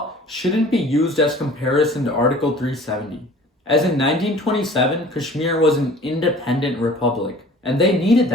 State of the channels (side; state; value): both; normal; correlation 0.47